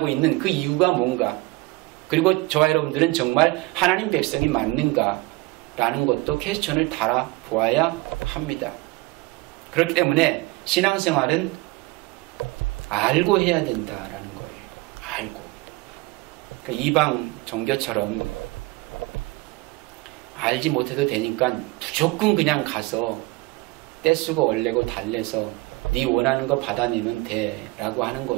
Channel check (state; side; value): quieter; left; 22.4 dB